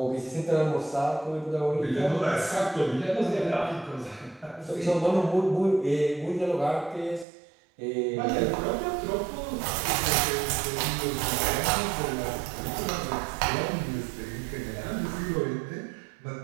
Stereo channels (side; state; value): left; drops out; at 7.2 s